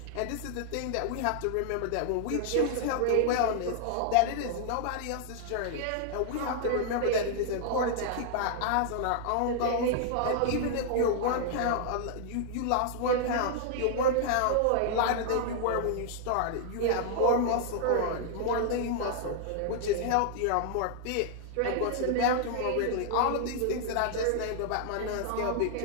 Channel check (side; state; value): both; different; correlation -0.01